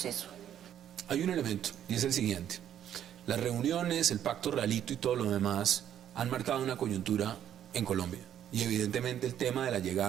Hay un elemento, y es el siguiente. Las reuniones, el pacto realito y todo lo demás han marcado una coyuntura en Colombia. Y evidentemente el tema de la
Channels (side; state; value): left; quieter; 10.3 dB